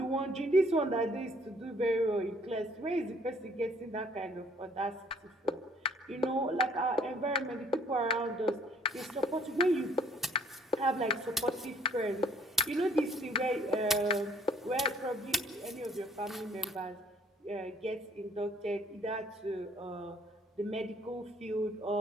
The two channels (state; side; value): normal; both; correlation 0.61